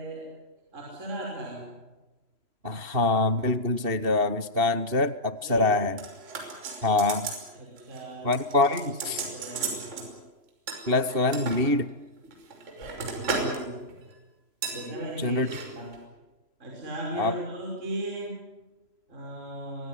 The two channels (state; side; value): late; left; 3.0 ms